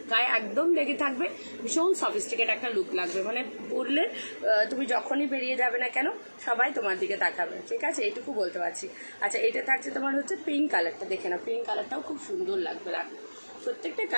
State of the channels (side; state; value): both; inverted; correlation -1.00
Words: গায়ে একদম লেগে থাকবে, ভীষণ সফিস্টিকেট একটা লুক লাগবে, মানে পরলে তুমি যখনই বেরিয়ে যাবে না কেন সবাই তোমার দিকে তাকাবে, ঠিক আছে, এইটুকু বলতে পারছি। আচ্ছা এটা থাকছে তোমার হচ্ছে পিঙ্ক কালারটা, দেখে নাও পিঙ্ক কালারটাও খুব সুন্দর লাগবে, দেখো প্রত্যেকটা